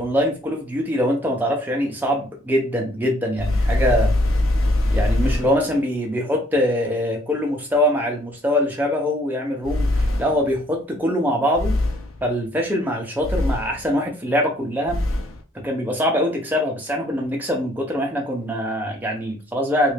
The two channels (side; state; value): both; normal; correlation 0.63